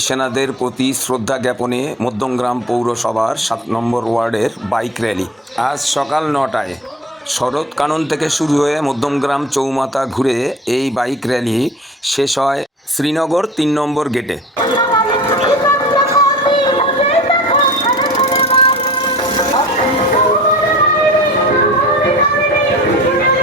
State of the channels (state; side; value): normal; both; correlation 0.42